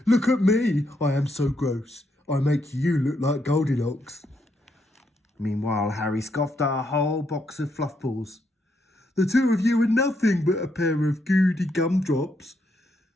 "Look at me. I am so gross. I make you look like Goldilocks." Meanwhile, Harry scoffed at a whole box of fluff balls. "The two of you are nothing but a pair of goody gumdrops.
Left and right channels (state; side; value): normal; both; correlation 0.77